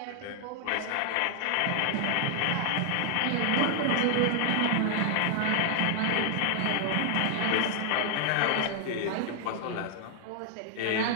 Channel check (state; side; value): different; both; correlation 0.00